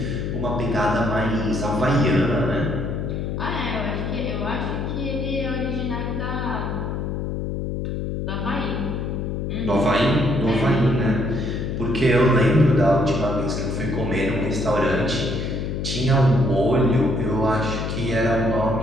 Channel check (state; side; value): noise; left; hum, 3 dB below the sound